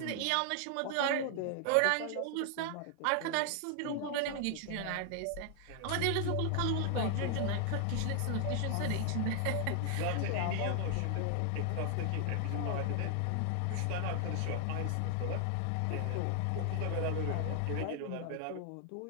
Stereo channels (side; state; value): both; different; correlation 0.00